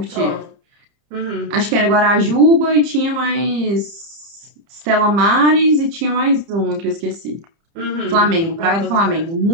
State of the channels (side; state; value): left; late; 30 ms